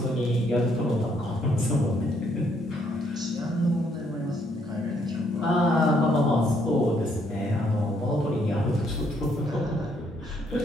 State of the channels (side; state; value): both; normal; correlation 0.70